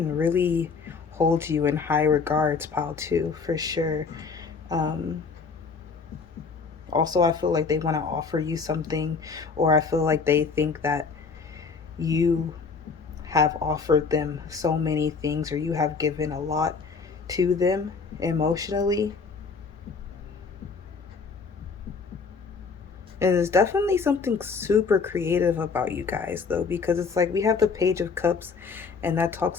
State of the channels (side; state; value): right; quieter; 5.1 dB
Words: really holds you in high regards, pile two, for sure. Um Also, I feel like they want to offer you something, or I feel like they think that you have offered them so many things, or you have given a lot to them emotionally. And there's definitely something super creative about you guys, though, because it's like we have the Page of Cups, and that